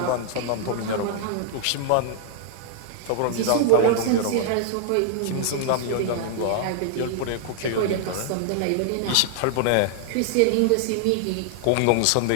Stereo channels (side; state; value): both; different; correlation 0.00